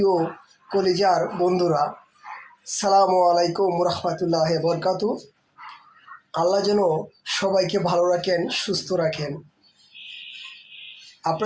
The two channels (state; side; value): identical; both; correlation 1.00